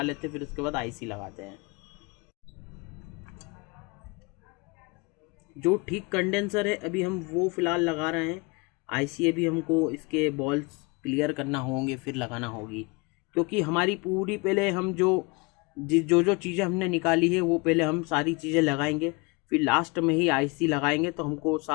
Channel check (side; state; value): right; quieter; 28.1 dB